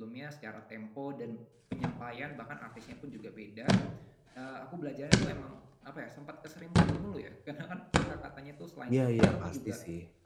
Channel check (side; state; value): both; identical; correlation 1.00